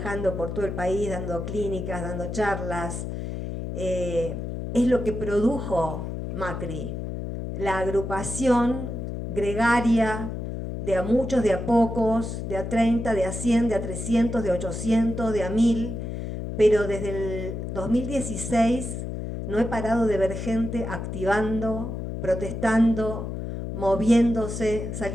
por todo el país, dando clínicas, dando charlas, es lo que produjo Macri, la agrupación gregaria de a muchos, de a pocos, de a 30, de a 100, de a 300, de a 800, de a 1000, pero desde el 2016 no he parado de ver gente activando, protestando, moviéndose,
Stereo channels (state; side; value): noise; left; hum, 5 dB below the sound